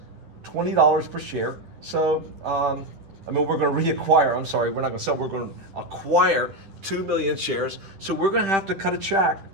$20 per share. So, we're going to reacquire. I'm sorry, we're not going to sell. We're going to acquire 2 million shares. So we're going to have to cut a check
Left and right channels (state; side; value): late; left; 10 ms